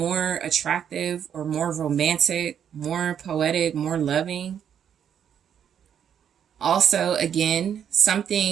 attractive or more romantic, more poetic, more loving. Also, again,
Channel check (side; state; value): left; quieter; 8.7 dB